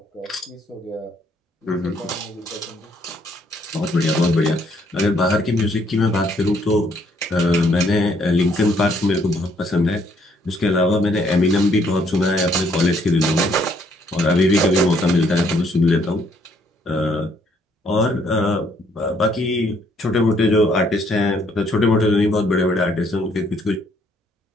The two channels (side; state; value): both; normal; correlation 0.68